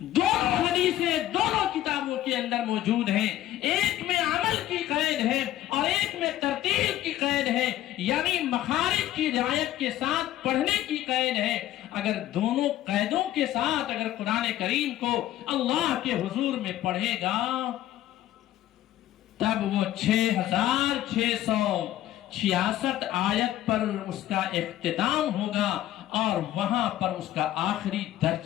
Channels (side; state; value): right; quieter; 13.6 dB